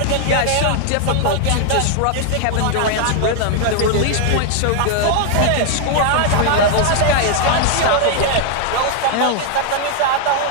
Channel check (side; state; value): both; different; correlation 0.00